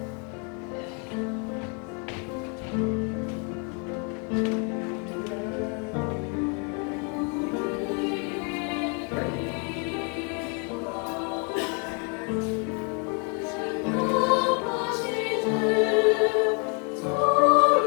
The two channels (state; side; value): quieter; right; 35.8 dB